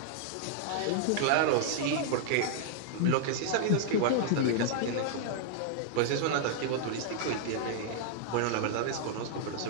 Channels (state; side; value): different; both; correlation -0.01